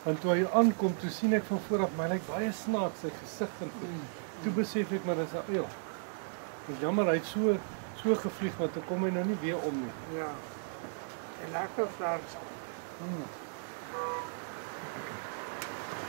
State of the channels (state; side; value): silent; left; digital silence